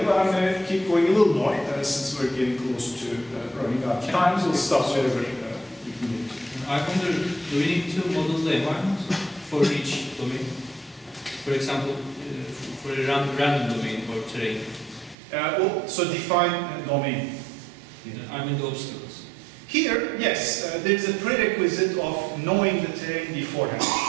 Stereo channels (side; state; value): left; drops out; at 15.2 s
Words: but I'm going to keep going a little more since we're getting close to running out of time. So we'll stop wherever we can get to. I wonder, do we need to model the environment for each domain? For example, for a random domain or terrain? So define domain. I mean the obstacles. Here, yes, there's a prerequisite of knowing the terrain beforehand.